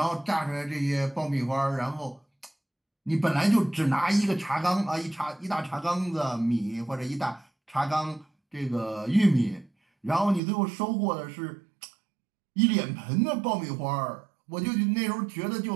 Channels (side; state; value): left; drops out; at 10.4 s